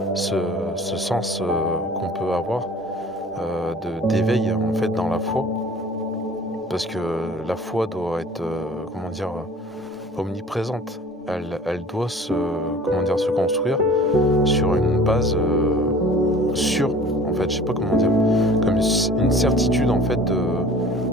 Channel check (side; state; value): both; normal; correlation 0.46